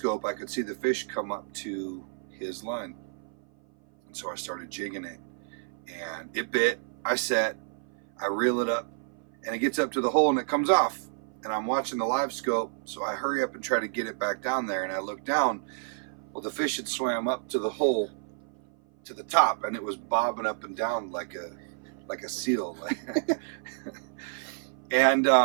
I could see the fish come up to his line. And so I started jigging it. And it bit, I set, I reel it up, and it gets up to the hole and it comes off. And I'm watching the live scope, so I hurry up and try to get it back down there. And I look down, well, the fish had swam up to the hole, to the top, and it was bobbing up and down like a seal. And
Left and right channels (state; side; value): silent; left; 56 dB below the other